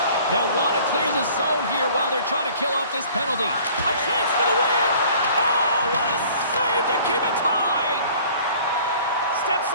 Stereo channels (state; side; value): inverted; both; correlation -0.51